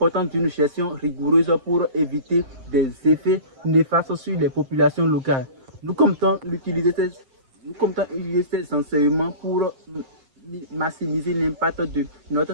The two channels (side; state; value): left; late; 7.6 ms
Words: d'une gestion rigoureuse pour éviter des effets néfastes sur les populations locales. Nous comptons utiliser ces enseignements pour maximiser l'impact de notre